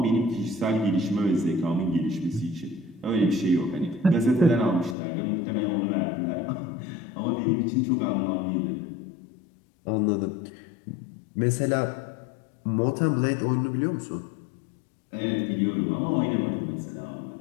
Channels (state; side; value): drops out; right; at 5.0 s